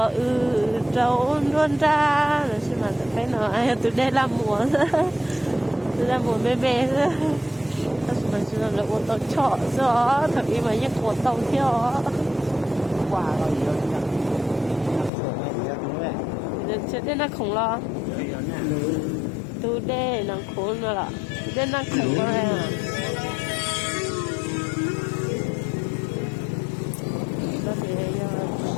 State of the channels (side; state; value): right; drops out; at 15.1 s